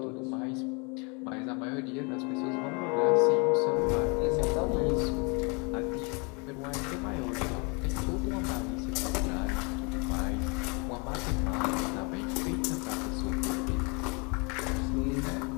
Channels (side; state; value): right; quieter; 31.9 dB